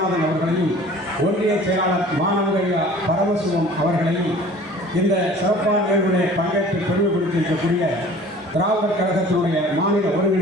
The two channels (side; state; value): both; normal; correlation 0.47